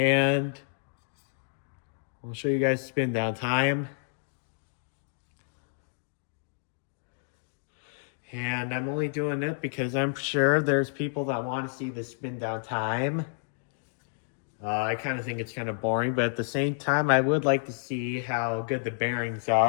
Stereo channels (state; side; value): silent; right; digital silence